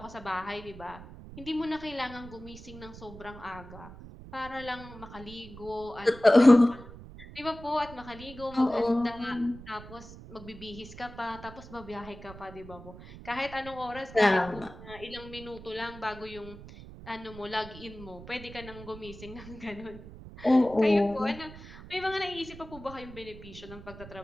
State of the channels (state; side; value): noise; right; rumble, 15 dB below the sound